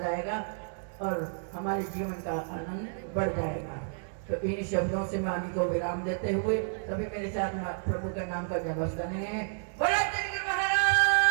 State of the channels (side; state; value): left; silent; digital silence